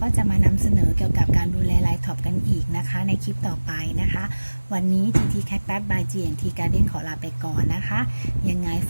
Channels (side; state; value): both; inverted; correlation -1.00